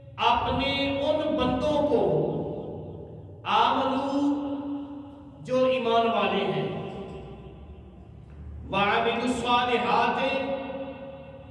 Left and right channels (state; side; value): identical; both; correlation 1.00